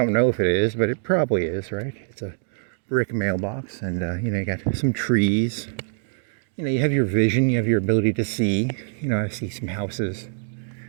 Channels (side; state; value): left; silent; digital silence